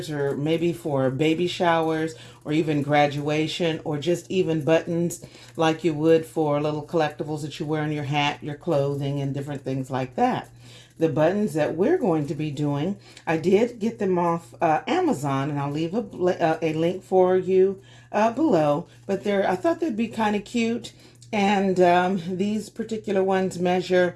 or maybe for baby showers, or even graduation, or just even buttons like you would for little collectibles that you wear on your hat, your clothing, and different things like that. The buttons that we're going to be doing, I did get them off Amazon, and I'll leave a link for you below. But I thought they'd be kind of cute. And these particular ones measure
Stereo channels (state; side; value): identical; both; correlation 1.00